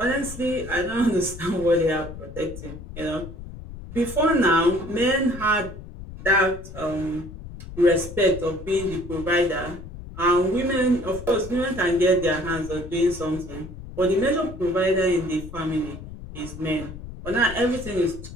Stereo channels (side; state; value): left; noise; rumble, 12 dB below the sound